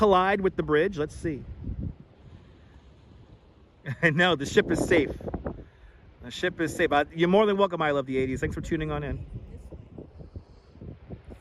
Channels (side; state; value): both; identical; correlation 1.00